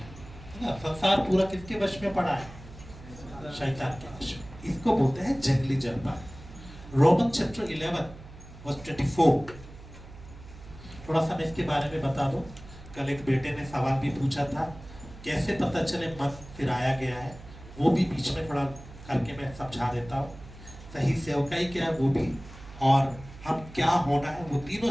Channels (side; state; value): right; noise; hum, 17 dB below the sound